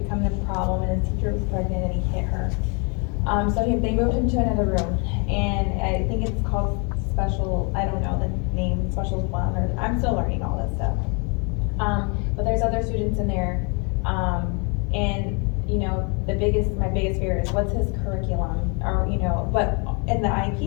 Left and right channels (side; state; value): right; quieter; 34.0 dB